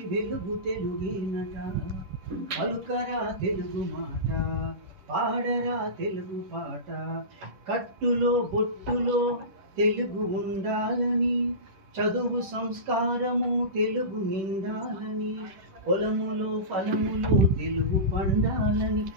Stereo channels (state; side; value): late; left; 10 ms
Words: వెలుగు తెలుగేనట. పలుకరా తెలుగు మాట, పాడరా తెలుగు పాట. కట్టులో బొట్టులో తెలుగు ఉండాలని, చదువు సంస్కారము తెలుగు నిండాలని, పొలములో ఫలములో తెలుగు పండాలని,